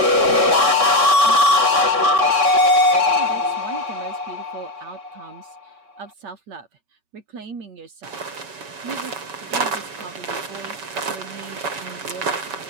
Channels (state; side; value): late; left; 5.2 ms